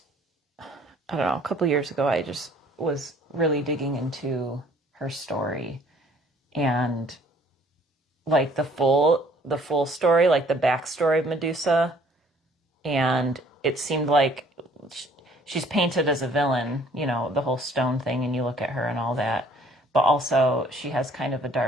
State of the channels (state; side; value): normal; both; correlation 0.58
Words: know, a couple years ago, I just was really digging into her story and like the full story, like the backstory of Medusa. And it seemed like she's painted as a villain, you know, the whole stone thing, and you look at her and all that. But also she has kind of a